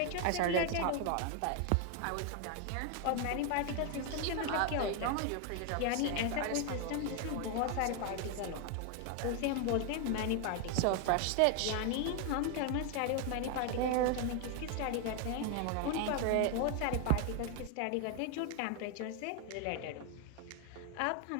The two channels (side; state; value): both; different; correlation 0.01